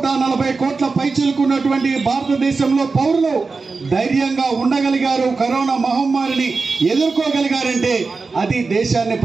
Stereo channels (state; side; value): quieter; left; 4.3 dB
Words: కోట్ల పైచిలుకున్నటువంటి భారతదేశంలో పౌరులు ధైర్యంగా ఉండగలిగారు, కరోనా మహమ్మారిని ఎదుర్కోగలిగారంటే అది దేశాన్ని